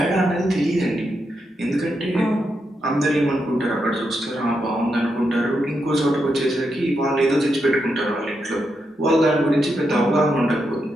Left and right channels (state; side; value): normal; both; correlation 0.84